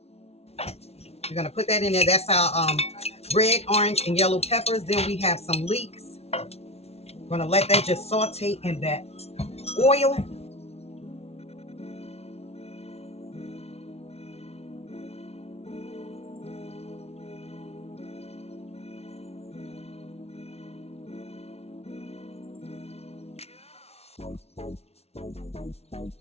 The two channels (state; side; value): late; right; 0.30 ms